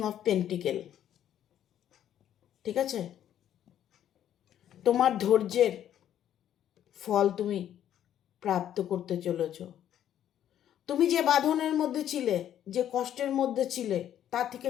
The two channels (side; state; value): right; quieter; 10.7 dB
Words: অফ পেন্টিকেল। ঠিক আছে? তোমার ধৈর্যের ফল তুমি প্রাপ্ত করতে চলেছ। তুমি যে বাঁধনের মধ্যে ছিলে, যে কষ্টের মধ্যে ছিলে, তা থেকে